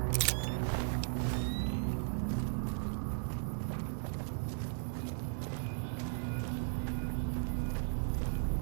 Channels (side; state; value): left; silent; 53 dB below the other